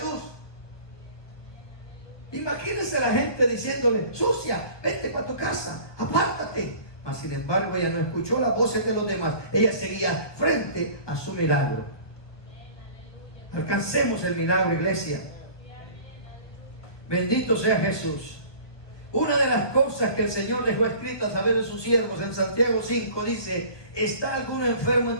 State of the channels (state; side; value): late; right; 1.3 ms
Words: Imagínense la gente diciéndole: sucia, vete para tu casa, apártate. Mas sin embargo ella no escuchó las voces de los demás. Ella seguía frente a su milagro. Alcancemos el milagro, iglesia. Bendito sea Jesús. Una de las cosas que el Señor dejó escrito a saber de sus siervos en Santiago 5 dice: ¿está alguno enfermo